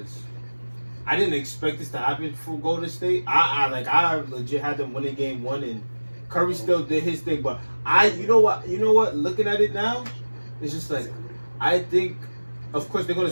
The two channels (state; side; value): inverted; both; correlation -1.00